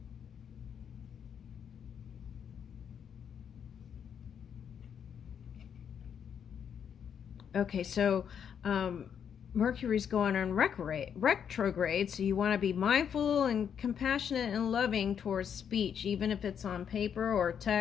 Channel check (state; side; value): quieter; right; 8.0 dB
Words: Okay, so Mercury's going on retrograde, so you want to be mindful and compassionate and loving towards speech, even if it's on paper or